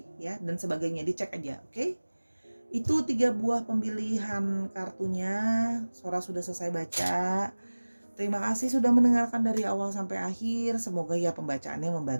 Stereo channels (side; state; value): both; inverted; correlation -1.00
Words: ya, dan sebagainya, dicek aja. Oke. Itu 3 buah pemilihan kartunya. Sora sudah selesai baca. Terima kasih sudah mendengarkan dari awal sampai akhir. Semoga ya pembacaannya